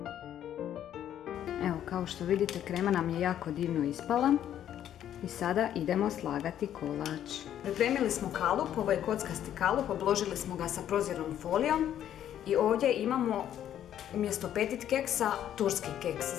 Evo, kao što vidite, krema nam je jako divno ispala. I sada idemo slagati kolač. Pripremili smo kalup, ovo je kockasti kalup, obložili smo ga sa prozirnom folijom. I ovdje imamo umjesto petit keksa turski keks.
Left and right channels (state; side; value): quieter; right; 10.7 dB